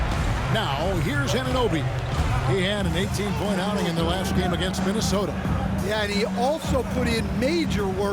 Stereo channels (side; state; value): both; identical; correlation 1.00